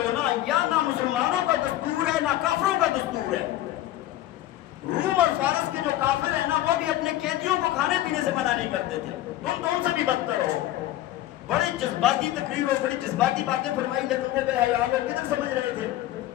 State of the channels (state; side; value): quieter; right; 14.5 dB